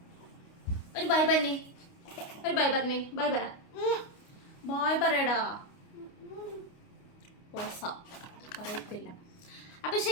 ഒരു ബൈ പറഞ്ഞേ. ബൈ പറ. ബായ് പറയടാ. പറയത്തില്ല. അപ്പൊ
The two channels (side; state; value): right; late; 29 ms